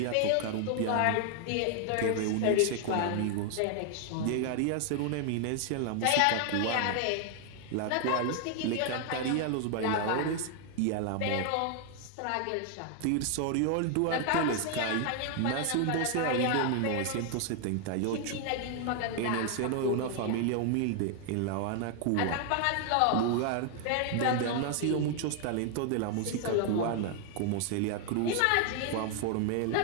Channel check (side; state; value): both; different; correlation 0.00